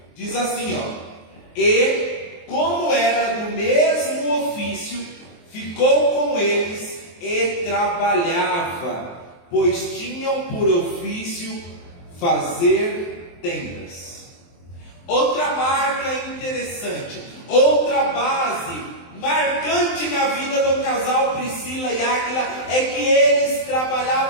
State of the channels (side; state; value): right; late; 23 ms